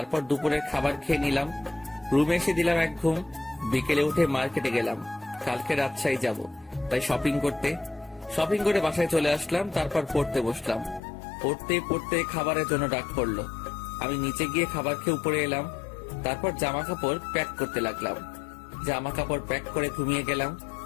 দুপুরের খাবার খেয়ে নিলাম। রুমে এসে দিলাম এক ঘুম। বিকেলে উঠে মার্কেটে গেলাম, কালকে রাজশাহী যাব, তাই শপিং করে বাসায় চলে আসলাম। তারপর পড়তে বসলাম। পড়তে পড়তে খাবারের জন্য ডাক পড়লো। আমি নিচে গিয়ে খাবার খেয়ে উপরে এলাম। তারপর জামা কাপড় প্যাক করতে লাগলাম। জামা কাপড় প্যাক করে ঘুমিয়ে গেলাম।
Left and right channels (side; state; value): right; drops out; at 11.0 s